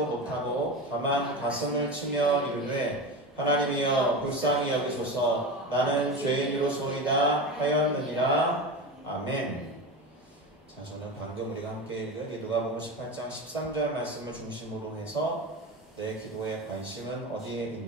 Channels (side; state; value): both; normal; correlation 0.25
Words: 못하고 다만 가슴을 치며 이르되 하나님이여 불쌍히 여기소서 나는 죄인으로소이다 하였느니라. 아멘. 자, 저는 방금 우리가 함께 읽은 이 누가복음 18장 13절 말씀을 중심으로 해서 내 기도의 관심은 어디에